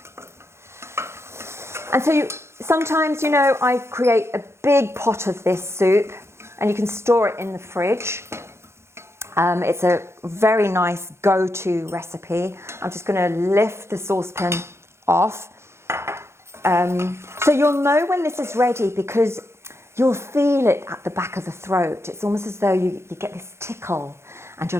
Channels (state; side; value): late; left; 0.13 ms